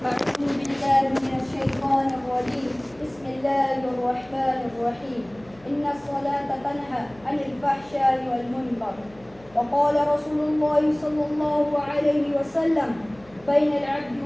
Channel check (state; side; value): noise; left; hum, 26 dB below the sound